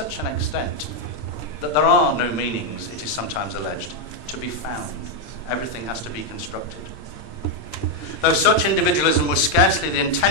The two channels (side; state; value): right; late; 8.7 ms